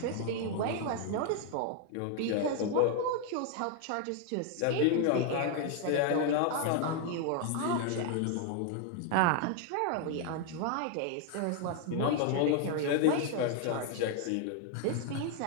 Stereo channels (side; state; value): both; different; correlation 0.00